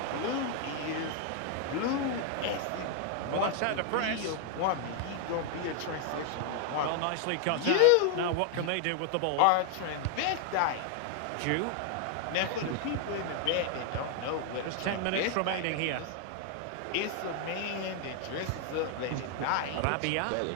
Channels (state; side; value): different; both; correlation 0.00